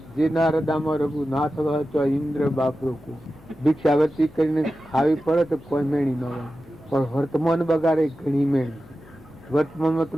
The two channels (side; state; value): left; noise; hum, 25 dB below the sound